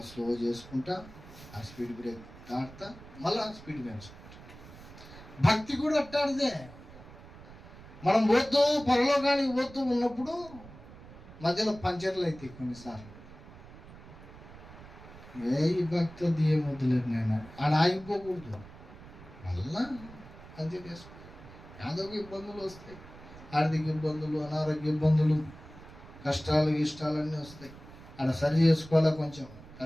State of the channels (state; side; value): noise; right; rumble, 18 dB below the sound